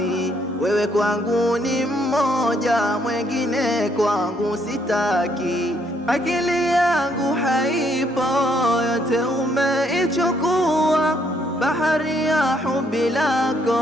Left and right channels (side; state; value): both; normal; correlation 0.70